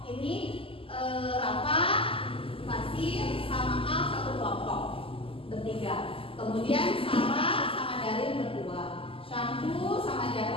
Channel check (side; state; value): right; late; 0.26 ms